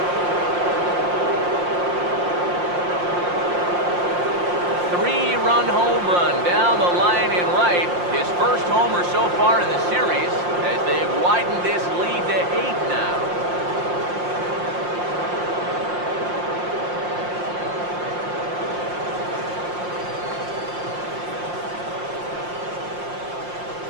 Three-run home run down the line in right. His first homer so far in the series as they've widened this lead to 8 now.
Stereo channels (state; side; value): late; left; 5.7 ms